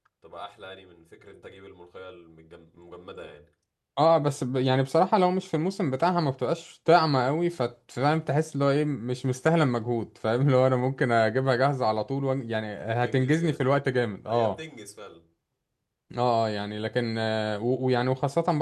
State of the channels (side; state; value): both; identical; correlation 1.00